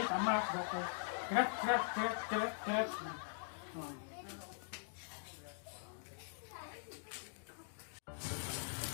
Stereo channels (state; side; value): silent; right; digital silence